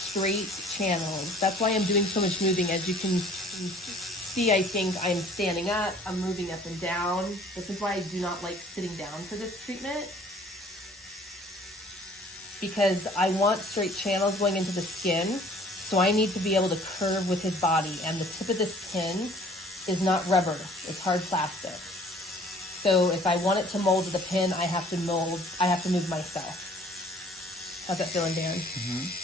channels. That's why I'm doing so much moving. As you can see, I think I'm standing up, I'm moving up and down. This is why I do not like sitting down for this treatment, because I want straight channels going into the skin. So I need to be able to curve with his body, and the tip of this pin is not rubber, it's hard plastic. So if I want it to mold to the pin, I have to move myself. How's that feeling, Dan?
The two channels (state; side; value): normal; both; correlation 0.54